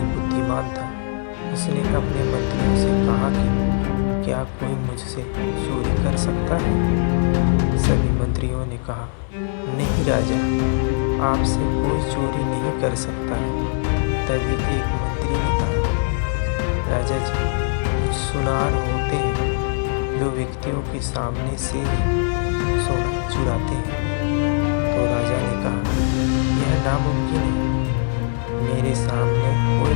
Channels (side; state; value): right; silent; 58 dB below the other